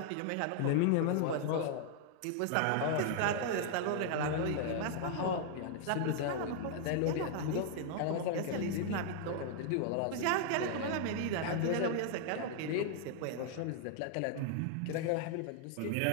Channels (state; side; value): different; both; correlation 0.00